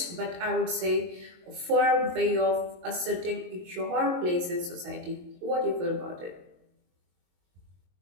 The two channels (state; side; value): late; left; 22 ms